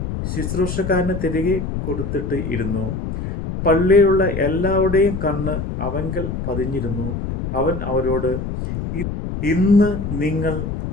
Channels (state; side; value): noise; left; rumble, 4 dB below the sound